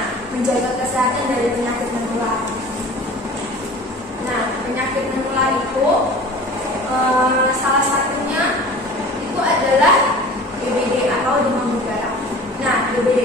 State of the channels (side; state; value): both; normal; correlation 0.42